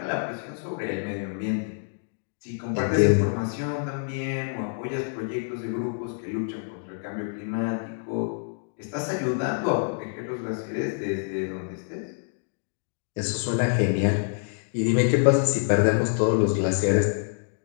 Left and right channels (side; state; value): right; silent; digital silence